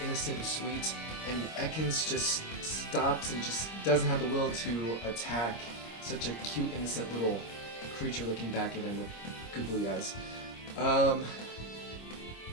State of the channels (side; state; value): right; late; 26 ms